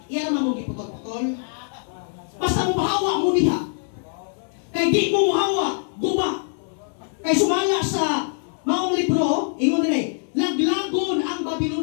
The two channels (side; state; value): right; silent; digital silence